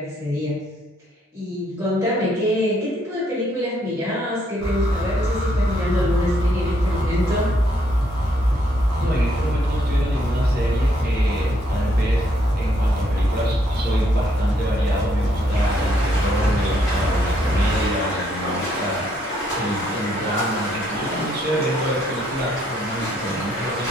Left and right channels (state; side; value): normal; both; correlation 0.71